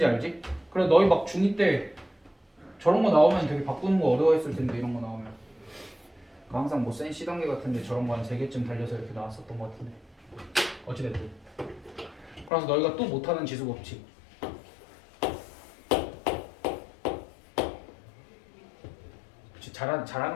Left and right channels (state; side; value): drops out; right; at 12.5 s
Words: 알지? 그래 너희 막 중2 때 저런 거 나오면 되게 바꾸는 거 어려워했을 텐데 이런 거 나오면 그러니까 항상 뭐 센 C단계 같은데 저런 거 한 3개쯤 달려서 이렇게 나왔었던 거 같은데 어찌됐든 그래서 너희가 또 못하는 지수법칙 그치,